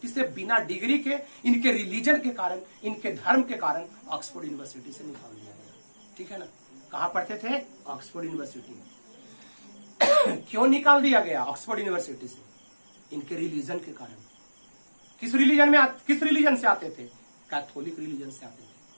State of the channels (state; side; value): inverted; both; correlation -1.00